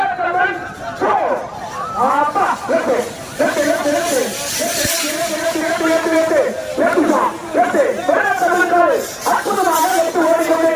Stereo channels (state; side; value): identical; both; correlation 1.00